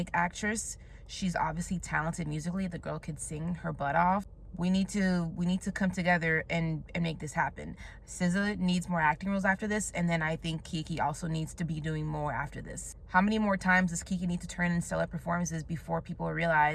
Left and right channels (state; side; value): identical; both; correlation 1.00